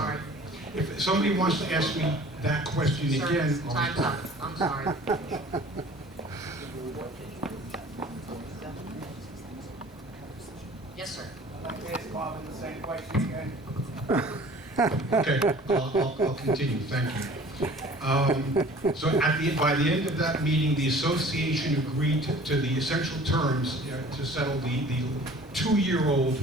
If somebody wants to ask me that question Sir, again, time's up. I'm sorry. Yes, sir. I'd like to ask Bob the same question again. Okay, I'll continue, thank you. So by the end of that meeting, the association agreed to the essential terms to settle the 2-year-old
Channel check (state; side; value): normal; both; correlation 0.48